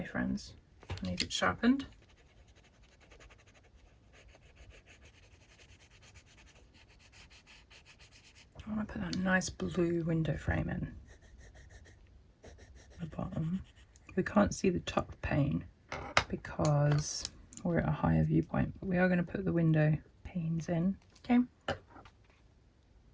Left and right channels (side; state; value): both; identical; correlation 1.00